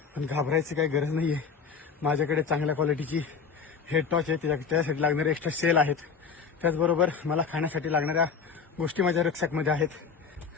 पण घाबरायची काही गरज नाहीये. माझ्याकडे चांगल्या क्वालिटीची हेड टॉर्च आहे, त्यासाठी लागणारे एक्स्ट्रा सेल आहेत. त्याचबरोबर मला खाण्यासाठी लागणाऱ्या गोष्टी माझ्या रक्षकमध्ये आहेत.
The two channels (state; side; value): quieter; right; 5.9 dB